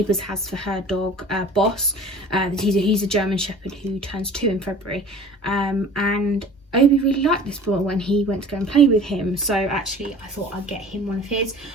has for her dog, Boss. He's a German Shepherd who turns 2 in February. And Obi really liked this ball when he went to go and play with him. So actually I thought I'd get him one of his.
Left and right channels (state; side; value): normal; both; correlation 0.44